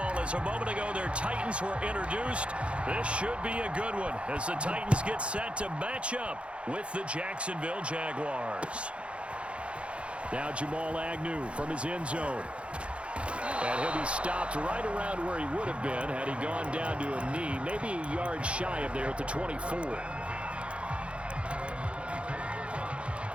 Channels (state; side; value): late; left; 0.060 ms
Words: as a moment ago their Titans were introduced. This should be a good one as the Titans get set to match up with the Jacksonville Jaguars. Now Jamal Agnew from his end zone. And he'll be stopped right around where he would have been had he gone down to a knee, maybe a yard shy of there at the 24.